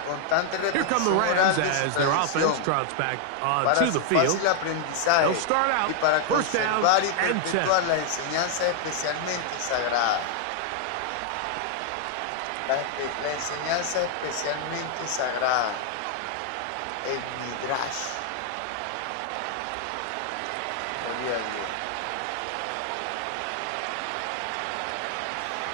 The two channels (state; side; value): different; both; correlation 0.00